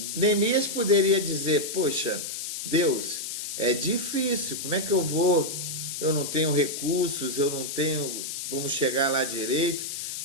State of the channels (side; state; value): left; noise; hiss, 6 dB below the sound